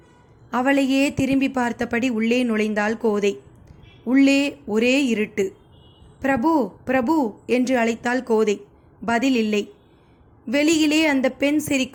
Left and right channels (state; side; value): identical; both; correlation 1.00